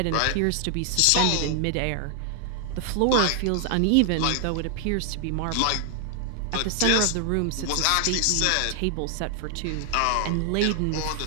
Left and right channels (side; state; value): both; different; correlation 0.00